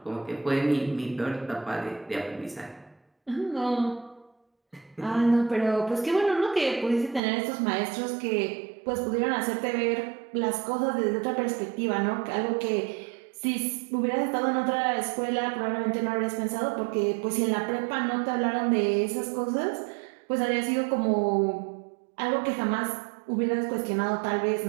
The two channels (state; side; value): drops out; left; at 7.2 s